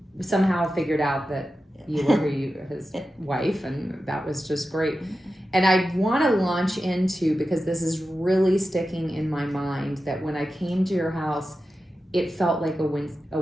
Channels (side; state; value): both; normal; correlation 0.92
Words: somehow figured out that you were his wife, and that was just great. And I want to launch into, because this is really sticking in my mind, that when I came to your house, it felt like a